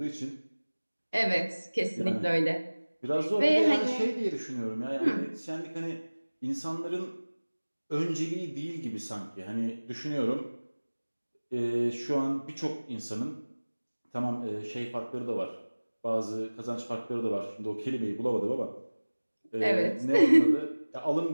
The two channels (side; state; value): both; inverted; correlation -1.00